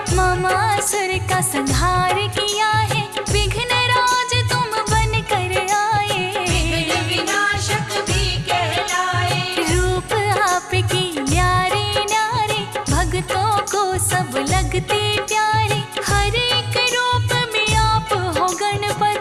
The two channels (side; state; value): both; identical; correlation 1.00